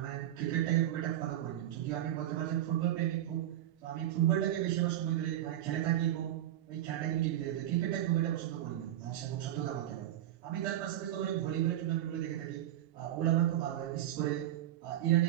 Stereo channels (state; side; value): quieter; left; 12.7 dB